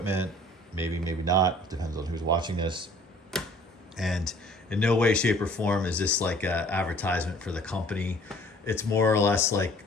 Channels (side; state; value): both; normal; correlation 0.52